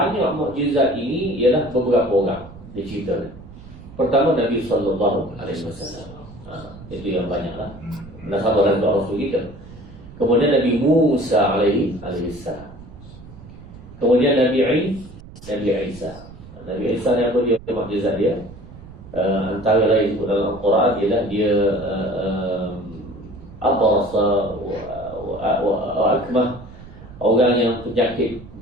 mukjizat ini ialah beberapa orang diceritakan. Pertama Nabi sallallahu alaihi wasallam. Itu yang banyaklah. Nasabah dan Rasul kita. Kemudian Nabi Musa alaihi salam. Kemudian Nabi Isa. Nabi Isa ni apa dia mukjizat dia? Antara lain dalam Al-Quran ialah dia abrasa wa akmah, orang yang penyakit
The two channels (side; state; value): right; noise; rumble, 17 dB below the sound